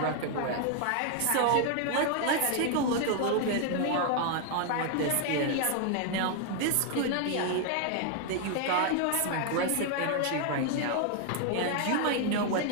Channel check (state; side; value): different; both; correlation 0.00